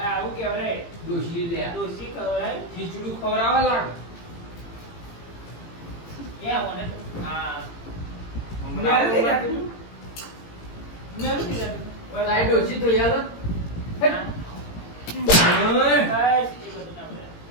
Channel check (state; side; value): late; right; 18 ms